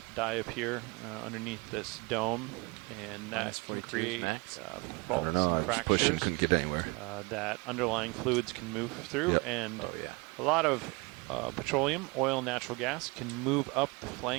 diapir underneath this dome, and that can create faults and fractures. Couldn't get anywhere. That underlying fluids can move through, and a lot of petroleum, oil, natural gas can move up the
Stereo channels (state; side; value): quieter; left; 27.3 dB